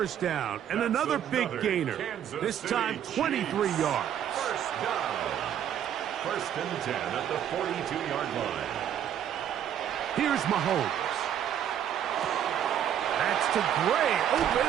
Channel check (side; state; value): left; quieter; 9.8 dB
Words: down, and another big gainer. This time, 23 yards. First down. First and 10 at the 42-yard line. Here's Mahomes. That's to Gray, open